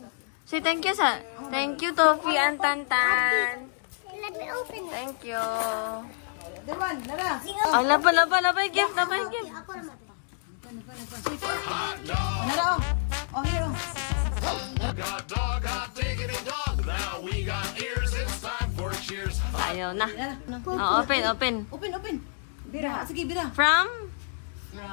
Say thank you sa. Thank you, Tofi and Tantan. Let me open it. Thank you. Dewan, nara. Ay, labay gift, labay gift. Ako naman. Nara oh. Oh, here oh. Got dog, hot diggity dog. Now we got ears. It's time for cheers. Ayaw na. Nara. Oh, open. Open. Bira. Sige, bira. From?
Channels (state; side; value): silent; right; digital silence